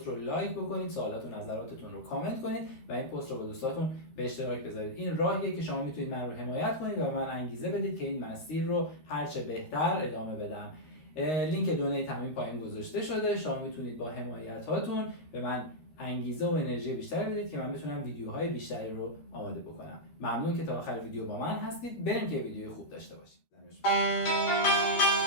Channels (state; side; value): late; right; 13 ms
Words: رو لایک بکنید، سوالات و نظراتتون رو کامنت کنید و این پست رو با دوستاتون به اشتراک بذارید. این راهیه که شما میتونید من رو حمایت کنید و به من انگیزه بدید که این مسیر رو هرچه بهتر ادامه بدم. لینک دونیت همین پایین گذاشته شده. شما میتونید با حمایت هاتون به من انگیزه و انرژی بیشتر بدید که من بتونم ویدیوهای بیشتری رو آماده بکنم. ممنون که تا آخر ویدیو با من هستید. بریم که ویدیوی خوب داشته باشید.